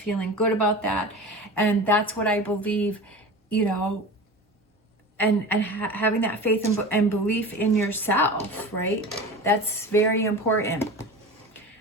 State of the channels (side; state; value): both; normal; correlation 0.33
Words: good about that, and that's what I believe, you know. And having that faith and belief in yourself, right? That's very important.